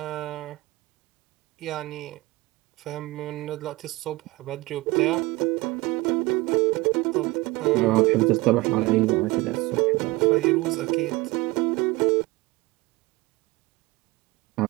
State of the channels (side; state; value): left; quieter; 21.6 dB